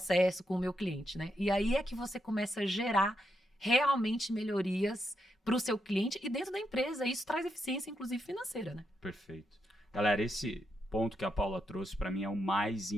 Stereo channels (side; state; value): both; normal; correlation 0.82